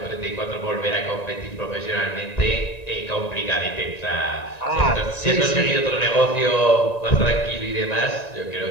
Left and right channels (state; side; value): late; right; 1.9 ms